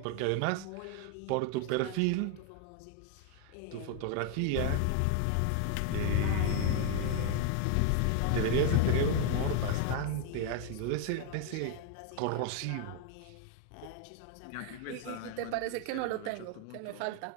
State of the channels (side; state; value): both; different; correlation 0.01